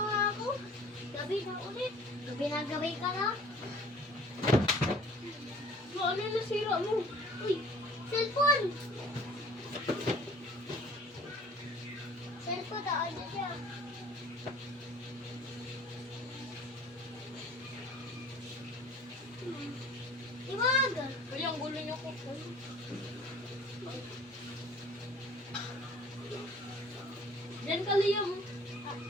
ako. Gabi na ulit. Gabi na gabi ka na. Ano yung nasira mo? Uy, cellphone! Cellphone na, ano siya? Iwag! Uy, ang gulo niyo ko. Diyan ka, Liam.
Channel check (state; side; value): normal; both; correlation 0.49